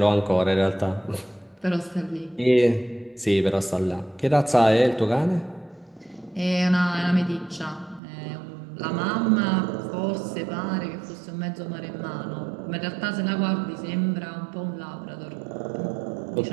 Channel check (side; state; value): left; drops out; at 8.0 s